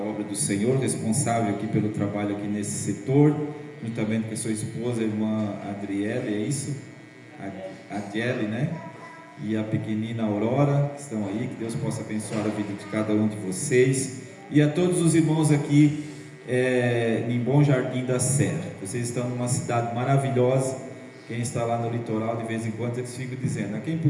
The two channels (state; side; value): identical; both; correlation 1.00